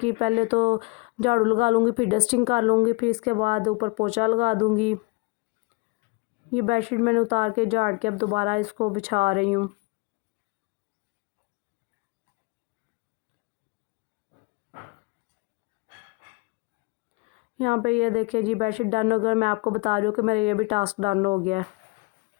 पहले तो झाड़ू लगा लूँगी, फिर डस्टिंग कर लूँगी, फिर इसके बाद ऊपर पोछा लगा दूँगी। ये बेडशीट मैंने उतार के झाड़ के अब दोबारा इसको बिछा रही हूँ। यहाँ पे ये देखिए जी, बेडशीट डन हो गया। मैं आपको बता रही हूँ कि मेरा ये भी टास्क डन हो गया है।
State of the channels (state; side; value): quieter; right; 27.9 dB